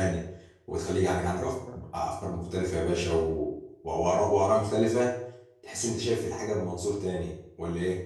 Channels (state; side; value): identical; both; correlation 1.00